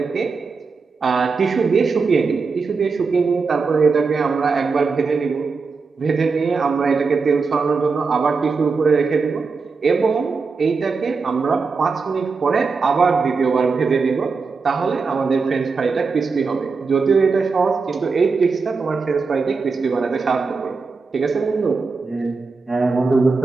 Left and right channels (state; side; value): quieter; left; 4.6 dB